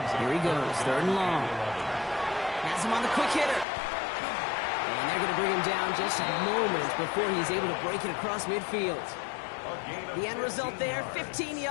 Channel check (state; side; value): drops out; right; at 3.7 s